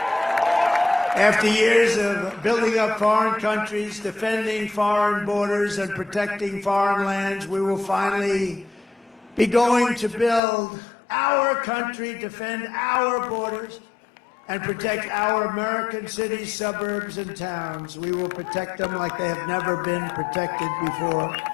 After years of building up foreign countries, defending foreign borders, and protecting foreign lands, we will finally be going to build our country, defend our borders, and protect our American cities, suburbs, and towns. We will protect them like they have never been protected before.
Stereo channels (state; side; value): drops out; right; at 10.4 s